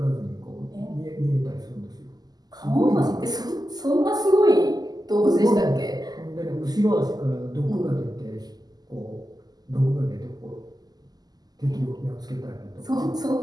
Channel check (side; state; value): left; late; 0.19 ms